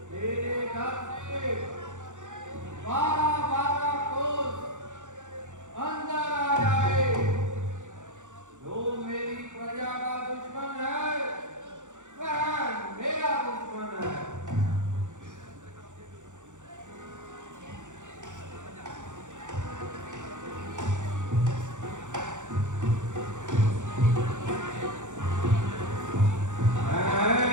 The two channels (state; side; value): late; left; 0.85 ms